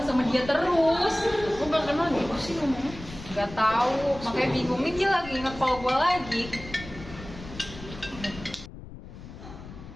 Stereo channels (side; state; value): left; noise; rumble, 14 dB below the sound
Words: sama dia terus. Kok gak kenal gitu sih ngomongnya? Gak tahu, makanya bingung nih, dia lagi nge-call gue lagi.